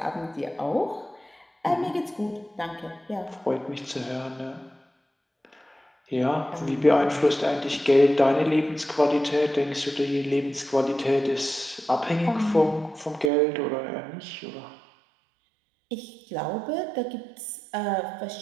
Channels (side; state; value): left; drops out; at 13.3 s